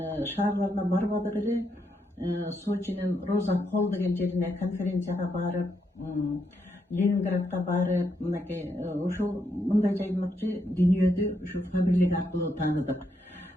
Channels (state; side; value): normal; both; correlation 0.79